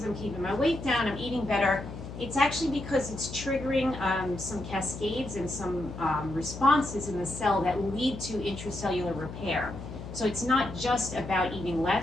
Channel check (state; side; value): noise; left; hum, 10 dB below the sound